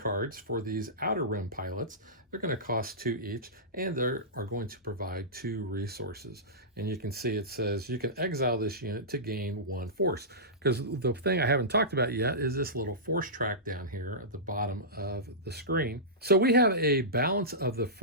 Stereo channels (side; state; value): both; normal; correlation -0.17